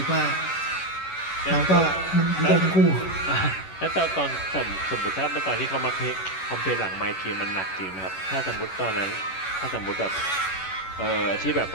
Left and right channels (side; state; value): right; late; 11 ms